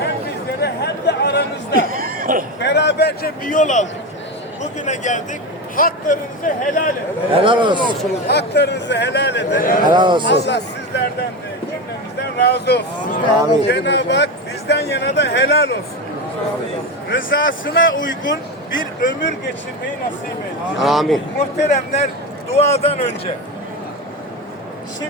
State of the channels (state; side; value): normal; both; correlation 0.19